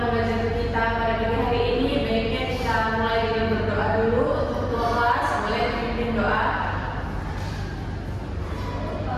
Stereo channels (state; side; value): identical; both; correlation 1.00